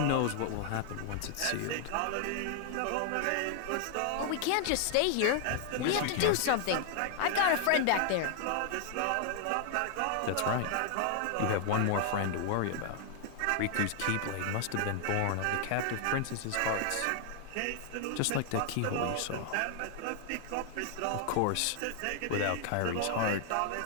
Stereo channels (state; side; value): different; both; correlation 0.00